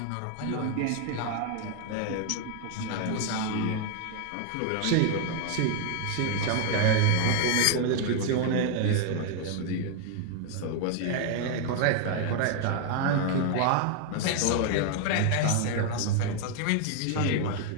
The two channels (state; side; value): different; both; correlation 0.00